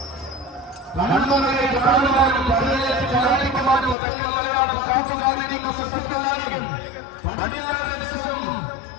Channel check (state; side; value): drops out; right; at 4.0 s